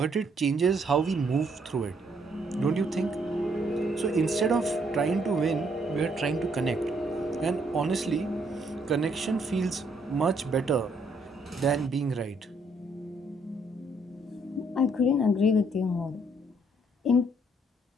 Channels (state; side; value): normal; both; correlation 0.69